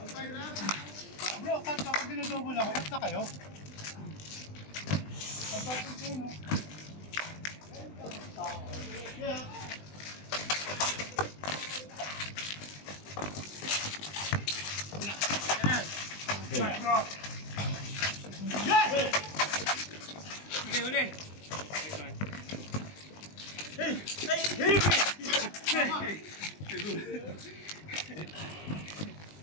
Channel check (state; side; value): late; right; 20 ms